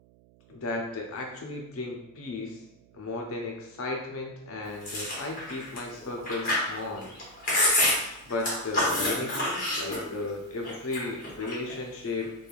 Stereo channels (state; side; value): noise; right; hum, 26 dB below the sound